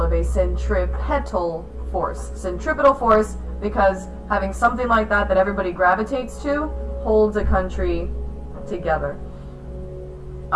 of a centripetal force. Centripetal force because having something like that everybody gravitates to holds a country together?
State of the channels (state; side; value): identical; both; correlation 1.00